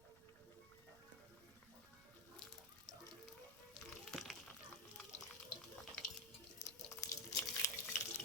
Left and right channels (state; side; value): noise; right; rumble, 21 dB below the sound